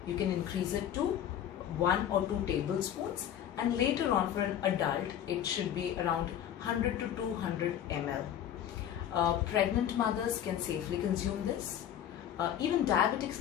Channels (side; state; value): right; quieter; 10.2 dB